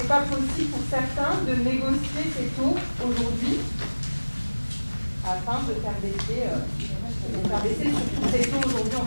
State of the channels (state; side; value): inverted; both; correlation -1.00